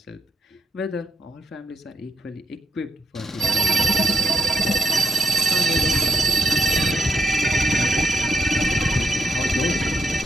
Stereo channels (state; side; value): normal; both; correlation 0.77